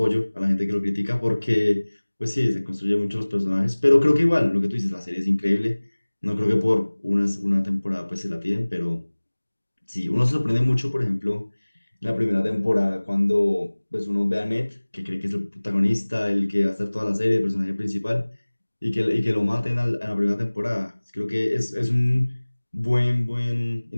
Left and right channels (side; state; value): both; inverted; correlation -1.00